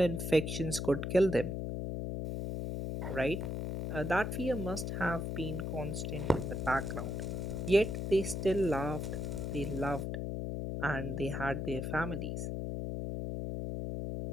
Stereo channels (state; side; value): noise; left; hum, 3 dB below the sound